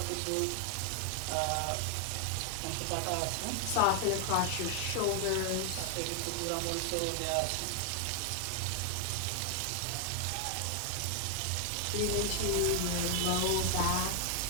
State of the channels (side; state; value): both; different; correlation 0.00